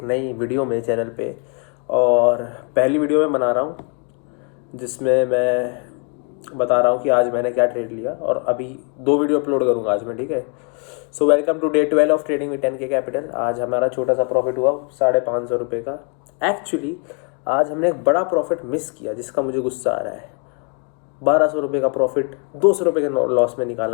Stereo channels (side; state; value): right; quieter; 37.1 dB